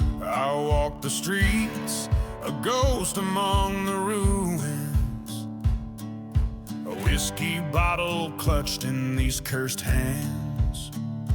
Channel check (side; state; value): both; identical; correlation 1.00